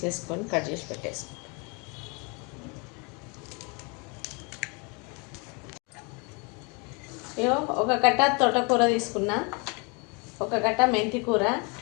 కట్ చేసి పెట్టేసుకోవాలి. ఒక కట్ట తోటకూర తీసుకున్నా, ఒక కట్ట మెంతి కూర,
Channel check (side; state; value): right; quieter; 31.6 dB